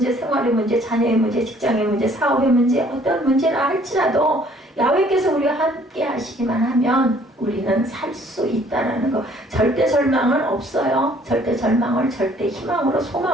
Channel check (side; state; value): both; normal; correlation 0.59